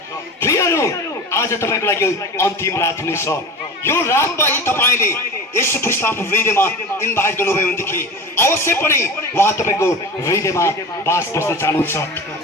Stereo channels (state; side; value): normal; both; correlation 0.33